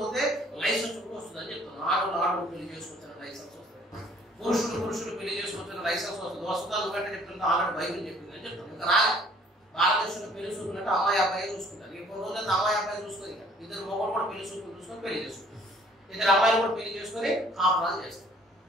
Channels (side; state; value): both; normal; correlation 0.57